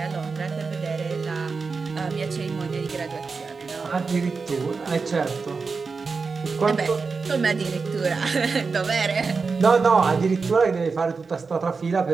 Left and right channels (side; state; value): left; quieter; 4.7 dB